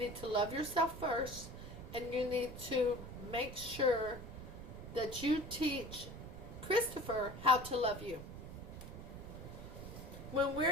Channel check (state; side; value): noise; right; rumble, 10 dB below the sound